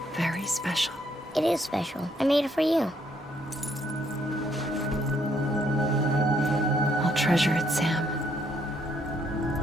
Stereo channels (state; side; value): normal; both; correlation 0.71